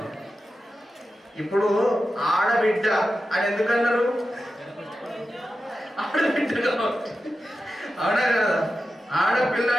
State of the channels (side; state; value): both; normal; correlation 0.92